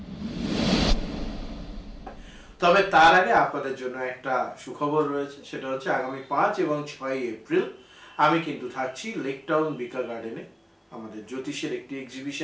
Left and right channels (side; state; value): both; identical; correlation 1.00